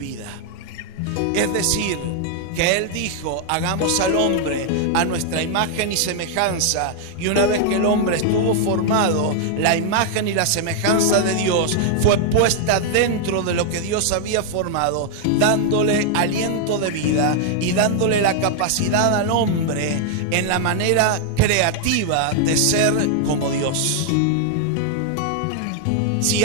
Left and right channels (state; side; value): different; both; correlation 0.00